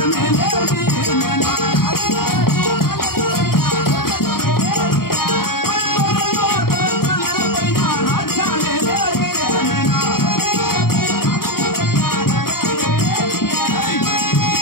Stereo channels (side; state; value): right; late; 0.93 ms